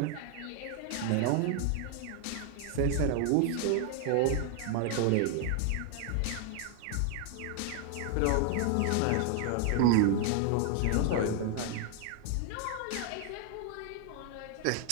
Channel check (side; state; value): both; different; correlation 0.00